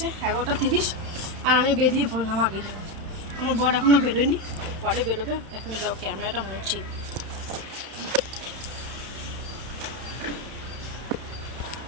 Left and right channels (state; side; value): late; left; 31 ms